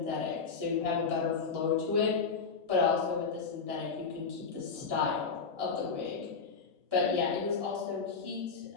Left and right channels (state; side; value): quieter; right; 5.2 dB